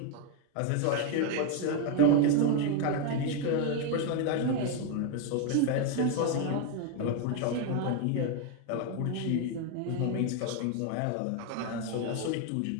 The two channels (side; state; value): both; different; correlation 0.01